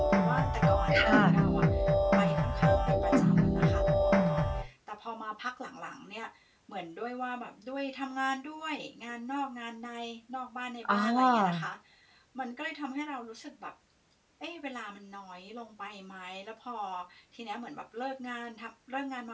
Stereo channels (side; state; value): both; identical; correlation 1.00